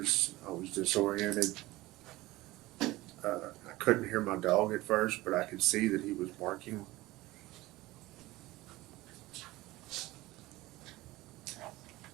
I was disoriented. I couldn't hear my dog at first, but I could see that he was barking.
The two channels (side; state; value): left; quieter; 18.8 dB